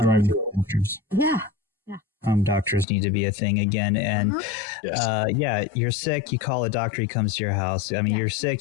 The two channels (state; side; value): drops out; right; at 2.9 s